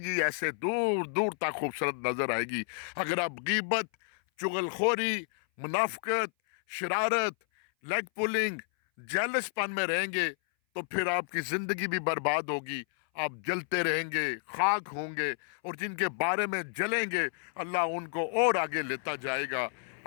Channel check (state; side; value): silent; right; 57 dB below the other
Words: ایسے دور دور تک خوبصورت نظر آئے گی۔ اگر آپ غیبت، چغل خوری، منافقت، شرارت، لیگ پولنگ، جیلس پن میں رہیں گے تو پھر آپ کی زندگی بھی برباد ہوگی، آپ جلتے رہیں گے، خاک ہوں گے، اور جن کے بارے میں جلیں گے اللہ ان کو اور آگے لیتا جائے گا۔